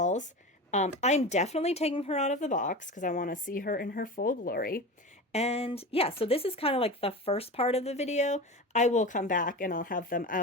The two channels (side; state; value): both; normal; correlation 0.28